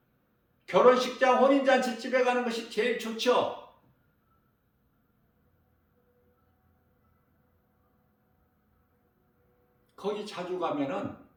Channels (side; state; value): both; identical; correlation 1.00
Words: 결혼식장 혼인잔치 집에 가는 것이 제일 좋죠. 거기 자주 가면은